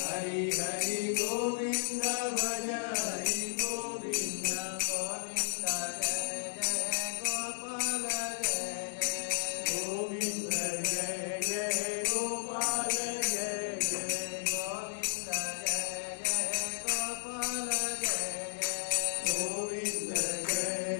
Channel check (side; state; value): right; silent; digital silence